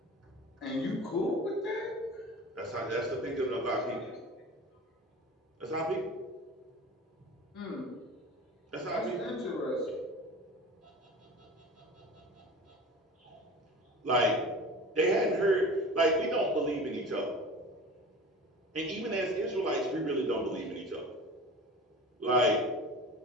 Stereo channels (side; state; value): both; normal; correlation 0.36